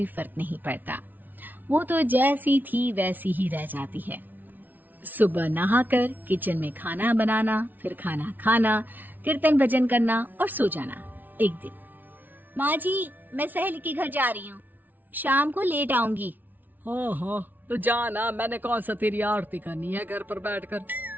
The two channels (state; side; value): late; left; 0.084 ms